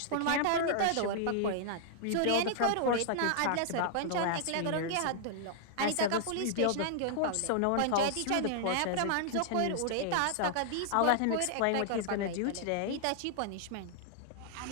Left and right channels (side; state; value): both; different; correlation -0.01